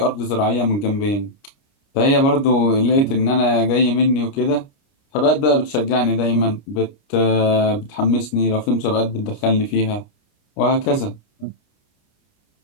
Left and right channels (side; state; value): right; late; 29 ms